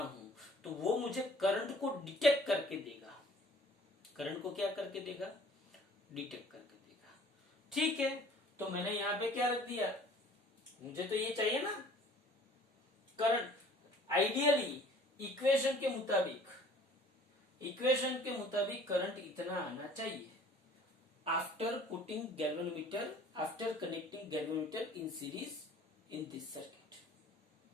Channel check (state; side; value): normal; both; correlation 0.51